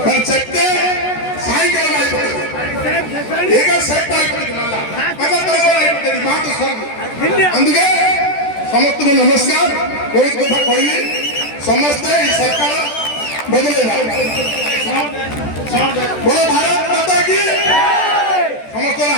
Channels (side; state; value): right; late; 14 ms